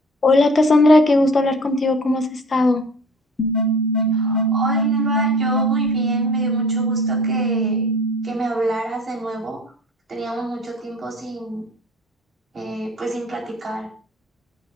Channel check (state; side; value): normal; both; correlation 0.45